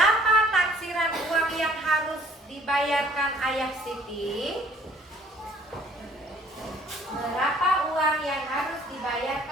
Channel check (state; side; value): normal; both; correlation 0.57